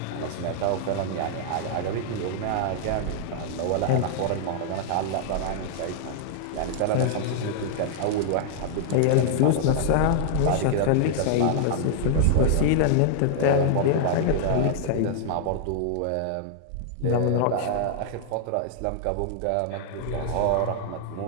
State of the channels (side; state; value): both; different; correlation -0.01